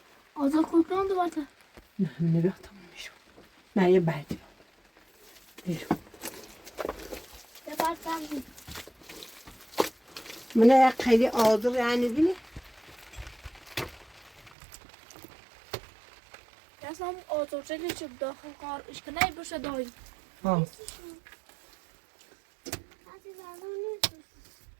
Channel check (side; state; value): left; drops out; at 14.6 s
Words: آزاد کلکان دو باته. نه بیا تمام میشون. نه یه بعدی. بیرون. یه بار سبزی. منه خیلی آزار یعنی بینی؟ Jasno otočili ću da kar iška najbrže dođe. ها